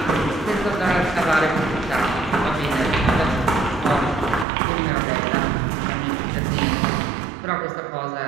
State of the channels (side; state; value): left; drops out; at 4.5 s